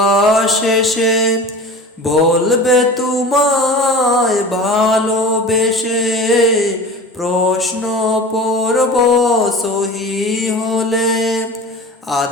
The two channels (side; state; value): both; normal; correlation 0.36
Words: এসে বলবে তোমায় ভালোবেসে। প্রশ্ন পর্ব সহি হলে,